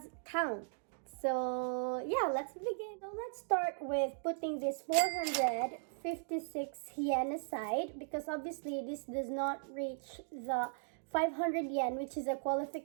count. So yeah, let's begin. So let's start with putting this 456 yen aside because obviously this does not reach the 500 yen, which is a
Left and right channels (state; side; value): silent; left; digital silence